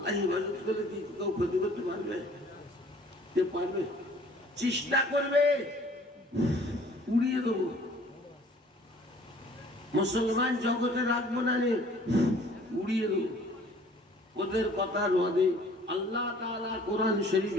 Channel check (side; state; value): both; normal; correlation 0.54